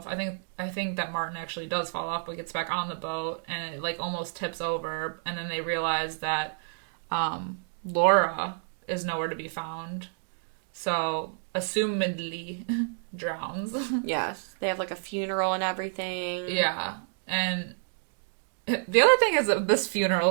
I think that Martin actually does fall off, but gets back on the boat, and it, like, almost tips over, and then they realize that Laura is nowhere to be found. So, assumedly, drowns. Yes. They have, like, a funeral and everything. Yeah. And the other thing is this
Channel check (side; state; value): left; silent; digital silence